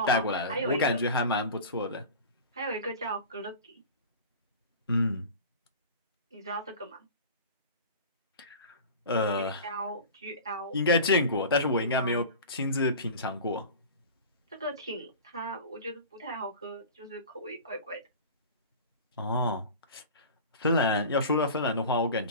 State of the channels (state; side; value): inverted; both; correlation -0.35